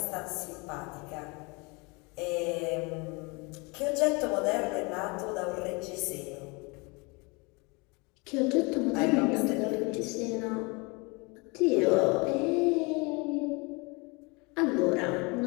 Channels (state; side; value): quieter; right; 28.5 dB